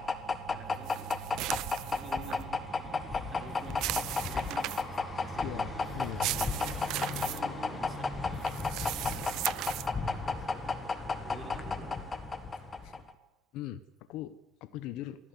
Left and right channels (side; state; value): both; normal; correlation 0.70